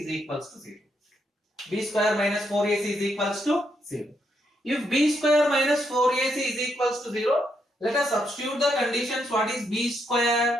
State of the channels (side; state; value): both; normal; correlation 0.78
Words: equals to 0. B square minus 4ac is equals to 0. If b square minus 4ac is equals to 0, let us substitute the conditions. What is b square?